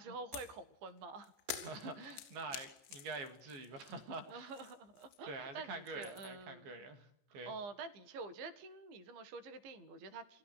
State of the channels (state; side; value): late; left; 14 ms